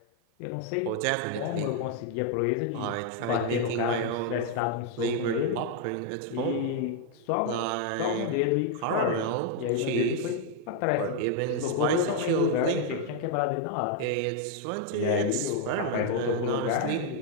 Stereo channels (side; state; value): both; different; correlation 0.00